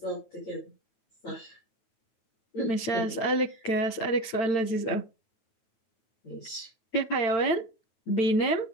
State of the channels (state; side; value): late; right; 8.9 ms